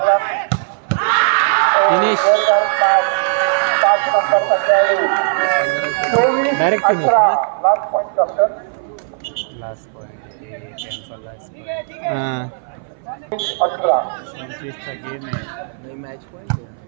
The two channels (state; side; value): silent; left; 60 dB below the other